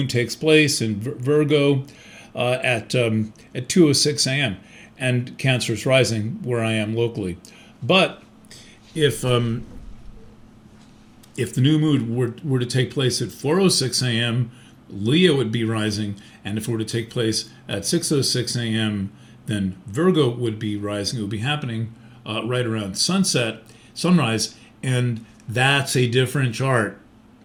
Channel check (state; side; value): identical; both; correlation 1.00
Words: takes place in Virgo at 2:06 a.m. and Cancer is rising where I am locally. But if the new moon were to take place at 4:06 a.m., Leo would be rising, and if it were to take place at 6:06 a.m., then Virgo would be rising. It would be happening right around sunrise, and that's a different chart.